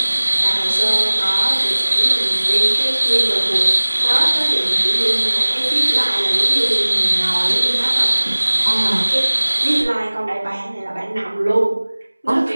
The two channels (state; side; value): inverted; both; correlation -1.00